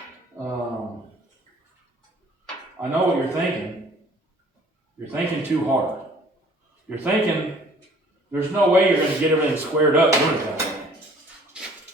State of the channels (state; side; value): normal; both; correlation 0.54